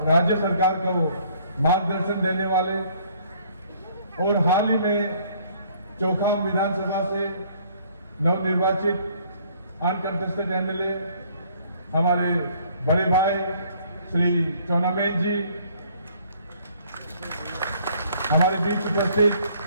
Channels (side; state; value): both; inverted; correlation -0.61